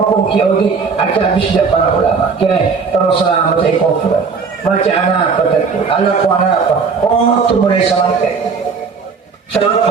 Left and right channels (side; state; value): left; quieter; 5.3 dB